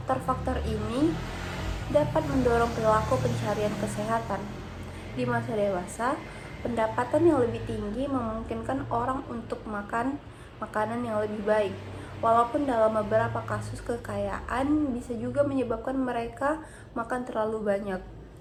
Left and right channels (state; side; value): identical; both; correlation 1.00